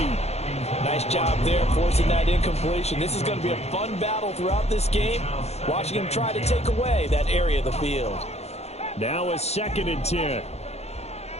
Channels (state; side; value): late; right; 0.31 ms